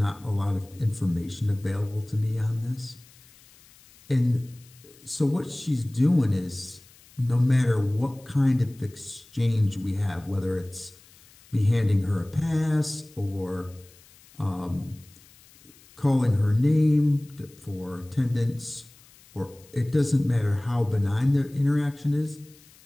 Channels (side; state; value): left; noise; hiss, 26 dB below the sound